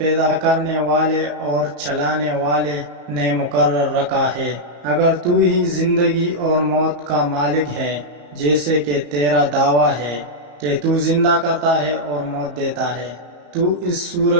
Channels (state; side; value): late; left; 34 ms